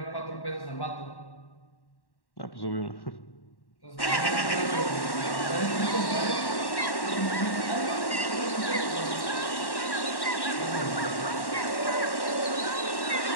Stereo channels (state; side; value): late; right; 1.1 ms